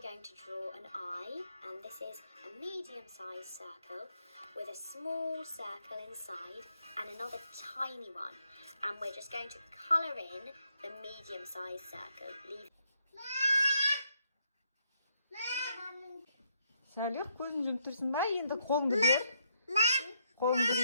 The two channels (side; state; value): both; inverted; correlation -0.75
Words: going to draw an eye, and this is a medium-sized circle with a small circle inside and another tiny one. And we're just going to colour in the medium-sized circle. Salih, көзін жұмып тұрсың ба? Енді қолыңды бер. Қолыңды